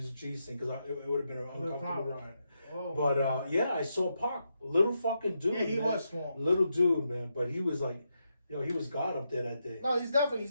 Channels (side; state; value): both; inverted; correlation -0.83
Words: G scene because it would have been an uncomfortable ride. Oh, But yeah, I saw Pac, little fucking dude. Yeah, he man. was small. Little dude, man. But he was like, he was God up there that day. No, he's